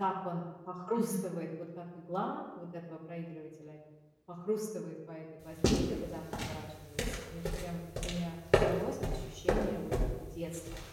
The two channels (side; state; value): both; identical; correlation 1.00